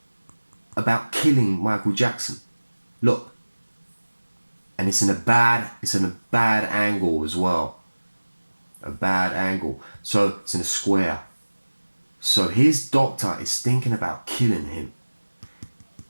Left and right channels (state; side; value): inverted; both; correlation -1.00